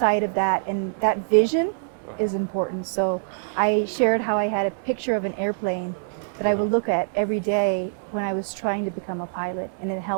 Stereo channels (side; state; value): left; silent; 61 dB below the other